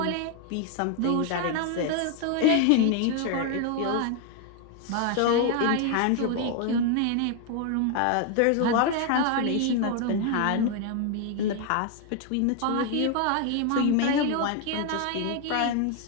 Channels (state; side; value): different; both; correlation 0.01